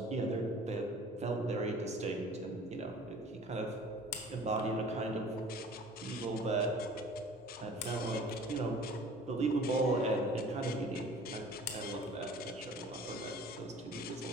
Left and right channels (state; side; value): normal; both; correlation 0.47